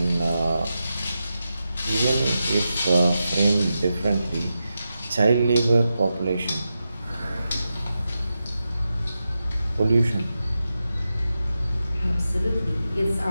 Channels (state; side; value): inverted; both; correlation -0.89